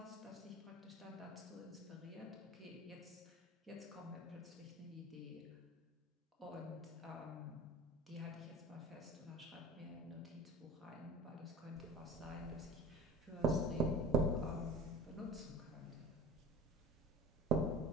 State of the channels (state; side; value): normal; both; correlation 0.37